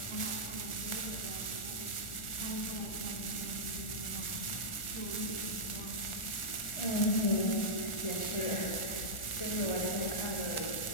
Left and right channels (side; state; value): right; late; 1.4 ms